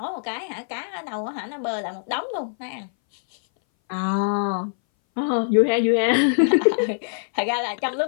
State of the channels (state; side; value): silent; right; 61 dB below the other